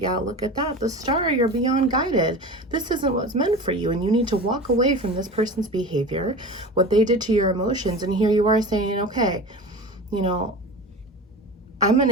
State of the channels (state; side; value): normal; both; correlation 0.32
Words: look at that. The star, you're beyond guided. This isn't what's meant for you, and you need to walk away from this person's behavior, what they did to your emotions. And here you are saying, okay, I'm going